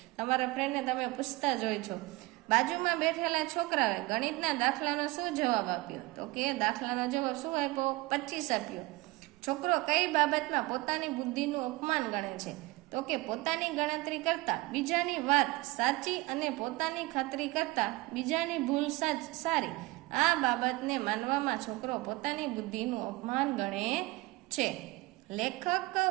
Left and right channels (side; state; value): left; quieter; 21.4 dB